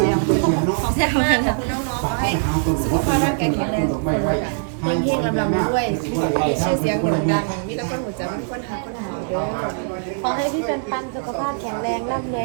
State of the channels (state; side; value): silent; left; digital silence